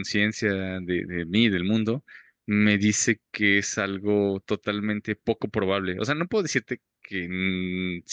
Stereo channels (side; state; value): both; identical; correlation 1.00